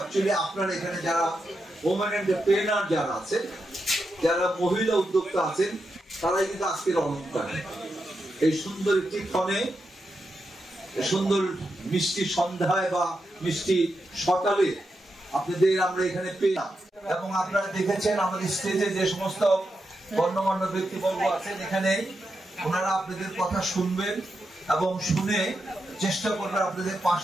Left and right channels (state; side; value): normal; both; correlation 0.86